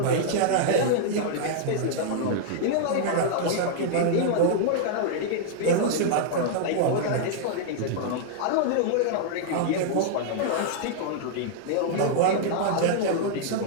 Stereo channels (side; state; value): both; different; correlation -0.01